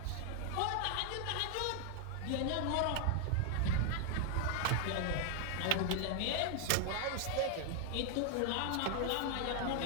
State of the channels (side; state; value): both; different; correlation 0.00